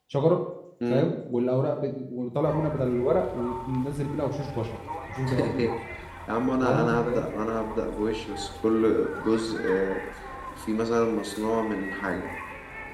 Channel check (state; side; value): identical; both; correlation 1.00